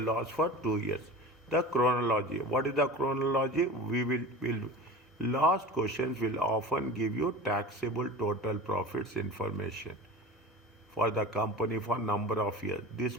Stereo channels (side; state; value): both; normal; correlation 0.34